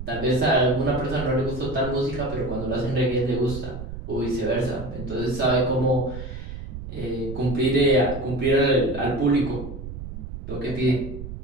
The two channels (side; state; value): right; noise; rumble, 9 dB below the sound